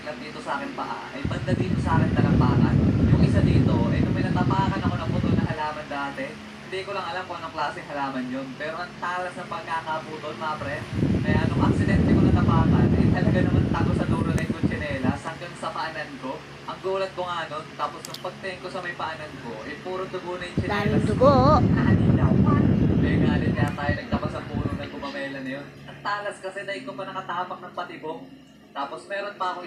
dito sa akin paa, ay banda dito sa akin talampakan. Yung isa dito, ay nung may natapakan ako ng putol na halaman dati, hindi ko lang alam kung anong klaseng halaman yun. Pero ang talas ng pagkakaputol, mga pre. Kaya nung aksidente ko natapakan, ay talaga naman tago sa dulo na yung tsinelas hanggang sa paanan ko. Ang gulat ko nga nun, tapos nung pagtingin ko sa may paanan ko, ay puro dugo na yung tsinelas. Daming dugo. Nakalilawan. May galit kaya tayo nagtapas ang puno ng gumamela na yun. Ang talas kasi dahil ko pa nakatapak ng patibong. Tapos meron pa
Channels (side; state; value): both; identical; correlation 1.00